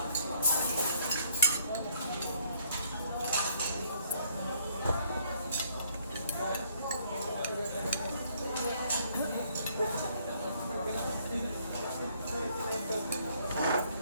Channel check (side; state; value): both; inverted; correlation -0.65